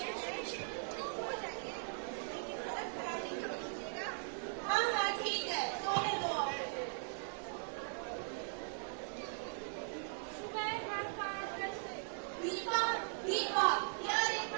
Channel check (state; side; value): silent; left; digital silence